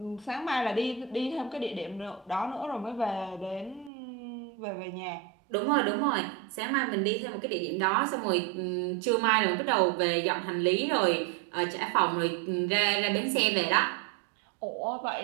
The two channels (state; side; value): drops out; left; at 3.9 s